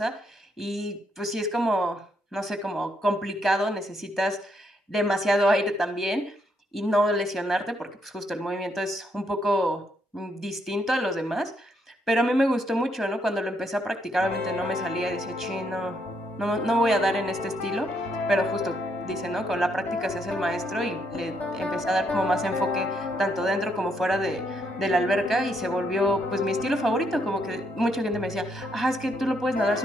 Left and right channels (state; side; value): normal; both; correlation 0.75